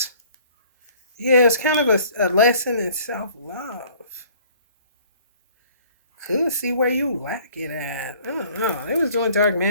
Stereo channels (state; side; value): inverted; both; correlation -0.55